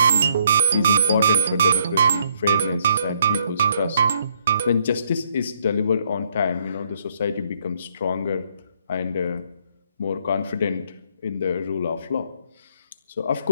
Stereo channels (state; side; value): inverted; both; correlation -0.71